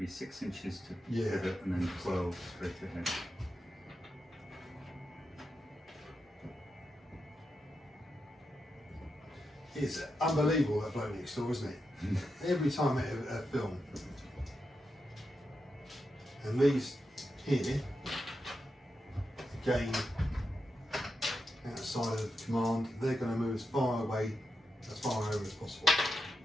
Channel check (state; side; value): normal; both; correlation 0.87